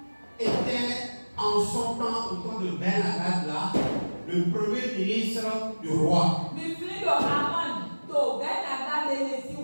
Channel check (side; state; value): both; inverted; correlation -1.00